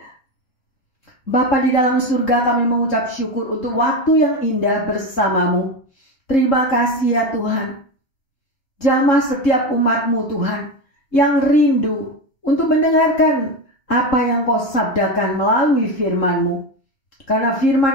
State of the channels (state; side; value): late; right; 3.7 ms